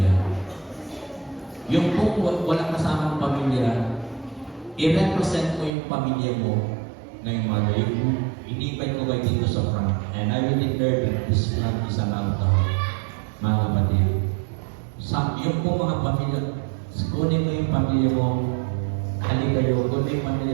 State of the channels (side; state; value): left; drops out; at 5.7 s